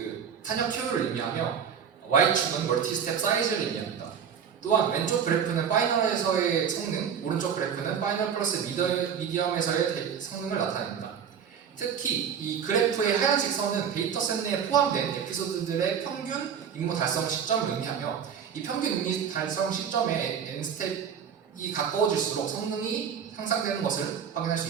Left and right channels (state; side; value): quieter; left; 7.6 dB